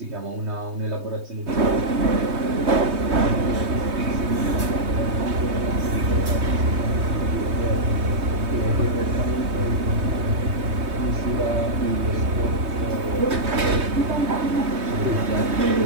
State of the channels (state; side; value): late; left; 3.2 ms